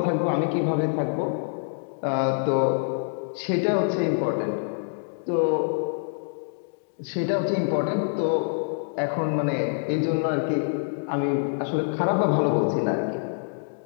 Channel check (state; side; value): silent; right; digital silence